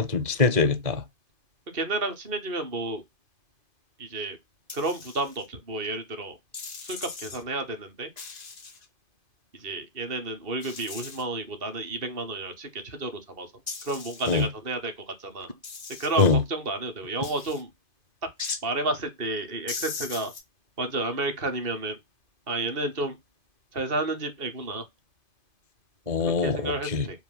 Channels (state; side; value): late; left; 2.5 ms